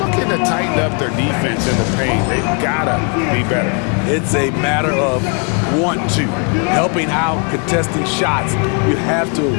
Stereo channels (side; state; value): right; quieter; 38.9 dB